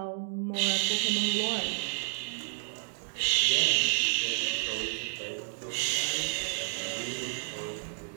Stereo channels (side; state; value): left; silent; digital silence